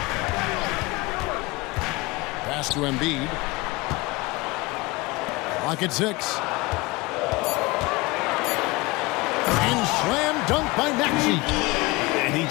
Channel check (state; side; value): quieter; right; 22.9 dB